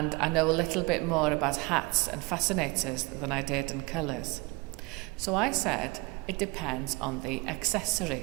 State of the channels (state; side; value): quieter; left; 25.5 dB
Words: I know a little bit more about hats and fascinators than I did in colours. So I said, it depends on the